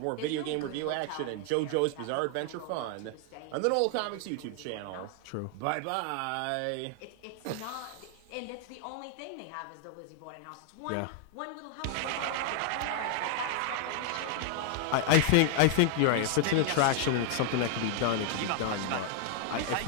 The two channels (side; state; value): both; different; correlation 0.00